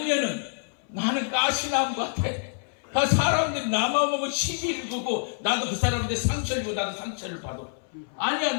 나는 가시나무 같아. 사람들이 나만 보고 시비를 두고 나도 그 사람한테 상처를 주고 나도 상처를 받아. 아니야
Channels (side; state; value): right; silent; 60 dB below the other